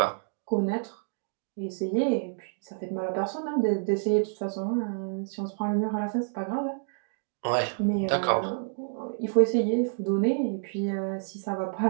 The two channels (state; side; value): silent; left; digital silence